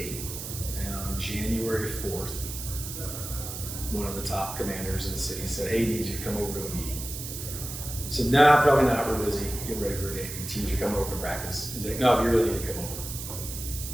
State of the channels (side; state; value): right; noise; hiss, 8 dB below the sound